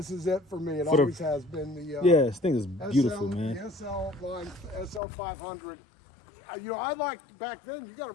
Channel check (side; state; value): right; drops out; at 5.0 s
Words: is it for me. It always has been the. Yeah, this thing is beautiful, man. The SL line, SL500. You know, I liked back then. You got